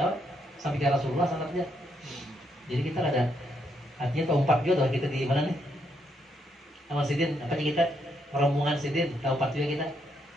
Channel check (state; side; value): normal; both; correlation 0.76